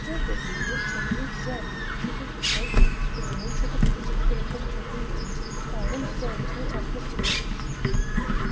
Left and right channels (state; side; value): identical; both; correlation 1.00